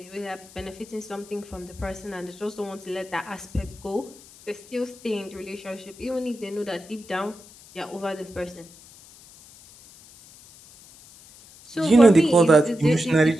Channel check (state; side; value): noise; left; hiss, 22 dB below the sound